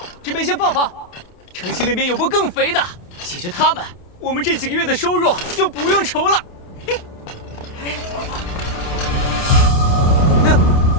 这边先放放。城西那边有波更肥的，解决他们，我们这几个月的收入就不用愁了。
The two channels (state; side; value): late; right; 28 ms